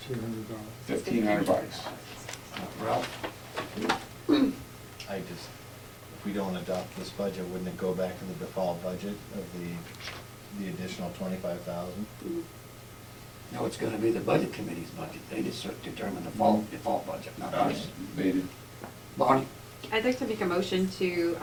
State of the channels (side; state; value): both; identical; correlation 1.00